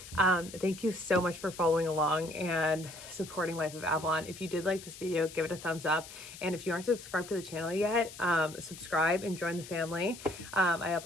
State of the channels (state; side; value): noise; left; hiss, 15 dB below the sound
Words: thank you so much for following along and supporting Life of Avalon. If you did like this video, give it a thumbs up. And if you aren't subscribed to the channel yet, subscribe and join the family. I